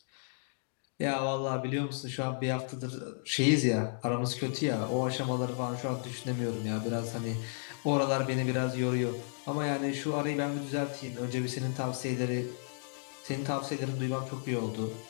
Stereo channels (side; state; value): right; silent; digital silence